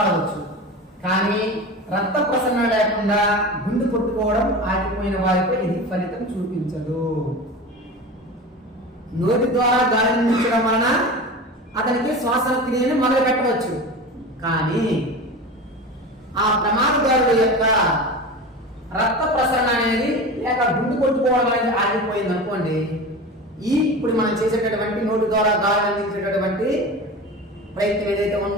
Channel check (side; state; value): both; normal; correlation 0.30